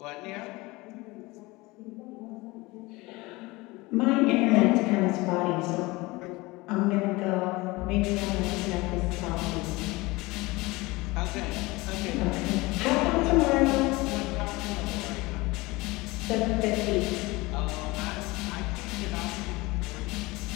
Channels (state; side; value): quieter; right; 22.3 dB